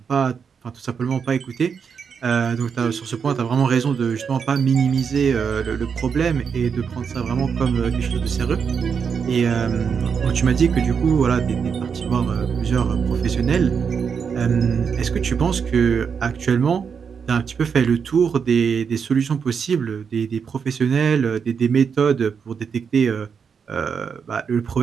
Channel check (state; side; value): quieter; left; 6.4 dB